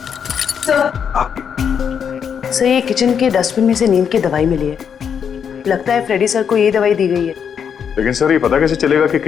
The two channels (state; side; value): quieter; right; 7.4 dB